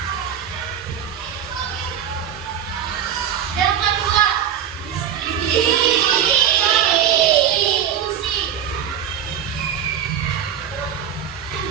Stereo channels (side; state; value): left; quieter; 9.2 dB